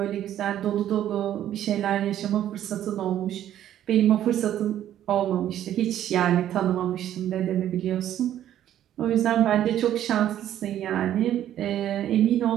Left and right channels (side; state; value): left; quieter; 11.5 dB